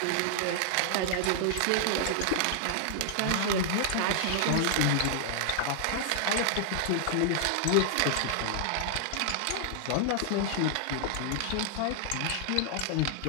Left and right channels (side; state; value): both; different; correlation -0.01